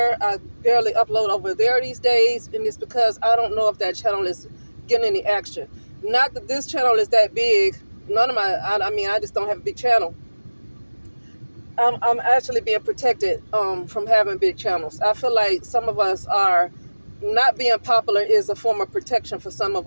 I barely upload over there these days, and it's because I don't know if that channel is getting any action. Not that this channel is that big. None of I just don't have a big channel. I'm actually being protected from having big channels. I feel like some of us are not being popular is a form of protection for some of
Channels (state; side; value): inverted; both; correlation -1.00